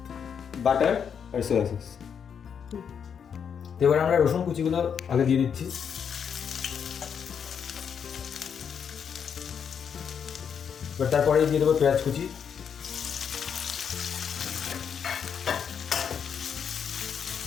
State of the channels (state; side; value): quieter; right; 7.4 dB